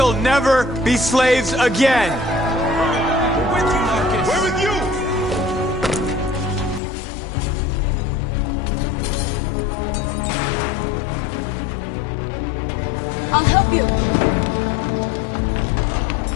never be slaves again! We're with you, Marcus! We're with you! I'll help you!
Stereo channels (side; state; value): right; drops out; at 6.8 s